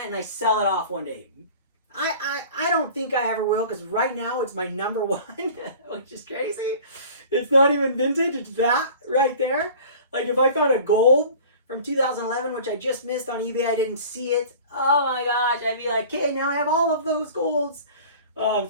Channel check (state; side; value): inverted; both; correlation -0.43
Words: and I sell it off one day. I don't think I ever will, because right now it's my number 1, which is crazy. It's not even vintage, it's that right there. Like if I found a gold from 2011, which I just missed on eBay, I didn't see it. Oh my gosh, I'd be like, okay, now I have all of those golds.